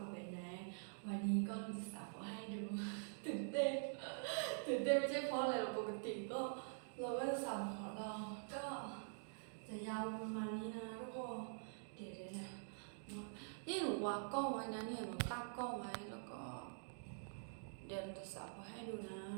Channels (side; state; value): left; silent; digital silence